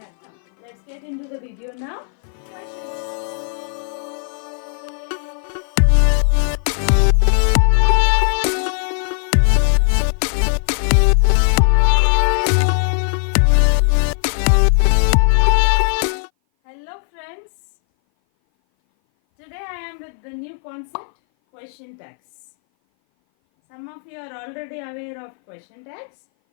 Let's get into the video now. Hello friends, today I am with the new concept, question tags. Some of you are already aware of question tags.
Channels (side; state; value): right; silent; 59 dB below the other